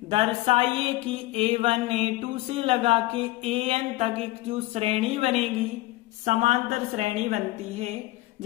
दर्शाइए कि A1 A2 से लगा के AN तक एक जो श्रेणी बनेगी, समांतर श्रेणी बनती है,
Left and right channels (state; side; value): quieter; right; 18.8 dB